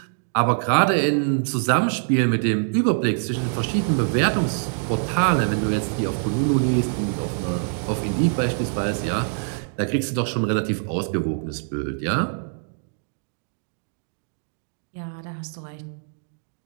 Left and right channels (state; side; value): silent; left; digital silence